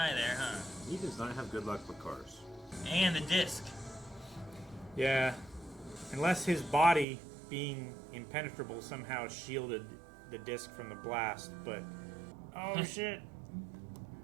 there, huh? He does not have good luck with cars. And the disc. Yeah. Unless his body being impenetrable somehow shielded the disc from the blast, but... Oh, shit.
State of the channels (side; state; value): left; drops out; at 7.1 s